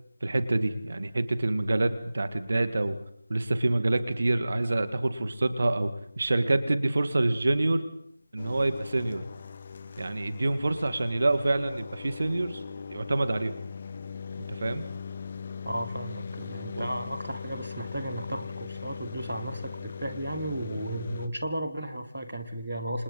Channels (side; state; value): both; inverted; correlation -0.95